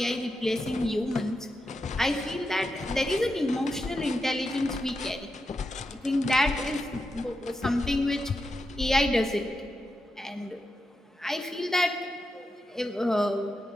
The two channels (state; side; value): normal; both; correlation 0.87